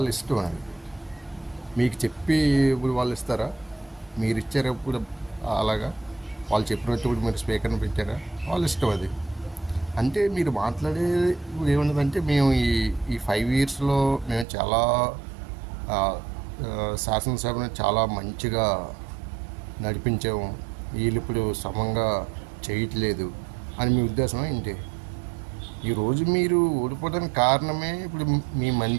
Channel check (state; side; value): drops out; left; at 14.5 s